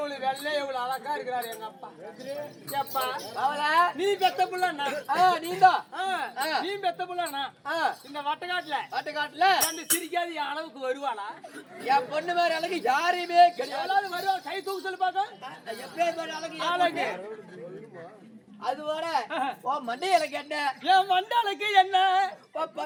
வெள்ளை எவ்வளவு அழகா இருக்கிறாரு எங்க அப்பா எப்பா நீ பெத்த புள்ளண்ணா நீதான் நீ பெத்த புள்ளண்ணா இந்த வட்டக்காட்டுல அந்த சிரிக்காது என் அளவுக்கு வருவாளா என் பொண்ணு மாதிரி அழகு யாரையுமே கிடையாது வருவா கை தூக்கு சொல்லி பாக்க எப்பேர் அழகு அழகு அது வர மண்டையலுக்கு என்ன என் மண்டாளுக்கு என்ன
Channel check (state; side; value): identical; both; correlation 1.00